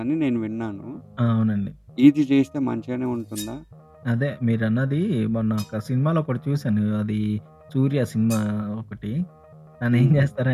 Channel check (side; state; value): both; identical; correlation 1.00